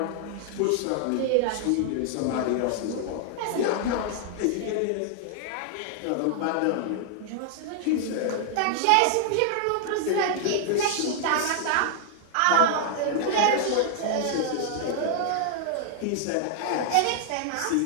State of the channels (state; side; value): different; both; correlation 0.00